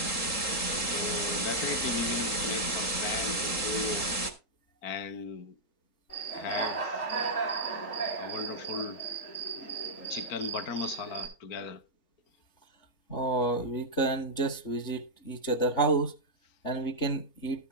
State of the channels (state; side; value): late; right; 3.8 ms